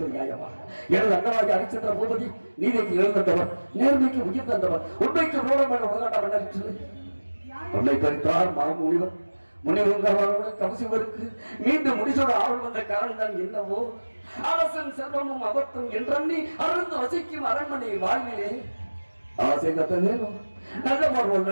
நியாயமா? எனது அண்ணனாக அரிச்சந்திர பூபதி நீதிக்கு எழுந்தவர், நேர்மைக்கு உயிர் தந்தவர், உண்மைக்கு ரோடம் என உலகாட்ட சொல்லி உன்னை பறித்தார் மாமுனிவர். முனிவர்களோட கவசிவருக்கு மீண்டும் முடிசோட ஆள் வந்த காரணம் தான் என்னவோ? அரசன் செல்வமும் அபத்தம் என்றி அருந்து வசிக்கும் அரண்மனை வாழ்விலே ஆசை கத்தனேனும் நல்ல பார்வல்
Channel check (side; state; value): both; inverted; correlation -1.00